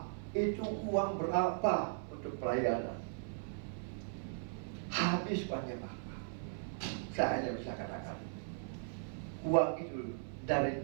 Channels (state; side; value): silent; left; 52 dB below the other